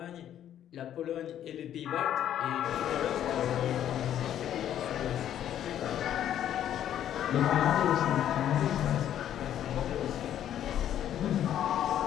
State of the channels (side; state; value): right; quieter; 10.8 dB